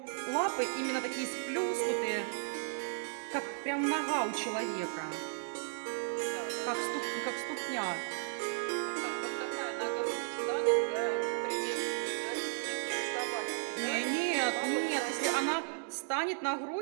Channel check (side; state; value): left; silent; digital silence